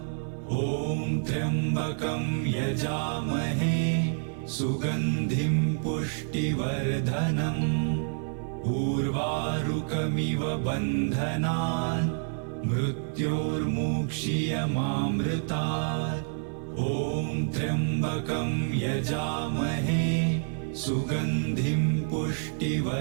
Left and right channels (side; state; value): left; silent; 59 dB below the other